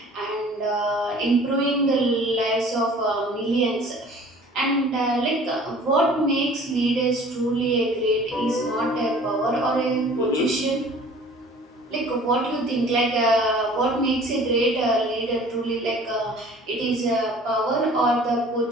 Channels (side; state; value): both; normal; correlation 0.48